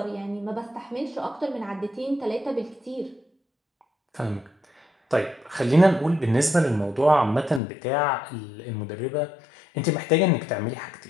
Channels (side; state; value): right; drops out; at 7.6 s